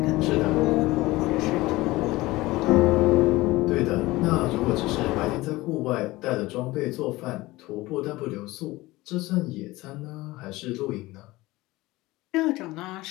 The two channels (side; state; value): right; quieter; 19.6 dB